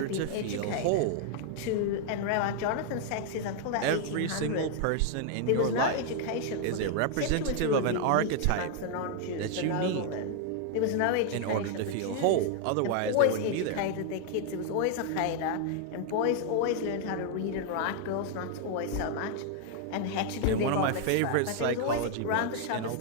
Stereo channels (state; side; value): different; both; correlation 0.00